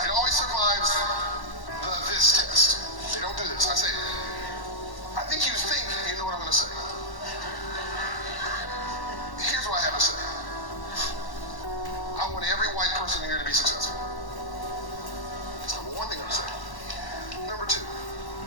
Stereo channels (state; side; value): late; right; 1.1 ms